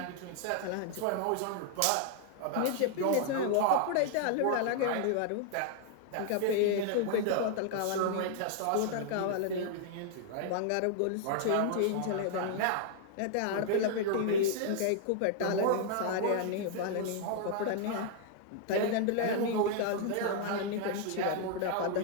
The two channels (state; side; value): different; both; correlation 0.00